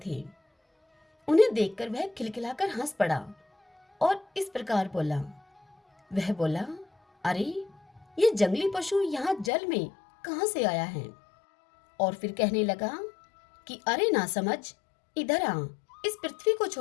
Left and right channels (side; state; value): right; drops out; at 9.5 s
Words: थे। उन्हें देखकर वह खिलखिलाकर हंस पड़ा और इस प्रकार बोला। वह बोला, अरे, ये जंगली पशु यहाँ जल में कहां से आया है? और फिर कहने लगा कि अरे ना समझ, इधर आ, इस पृथ्वी को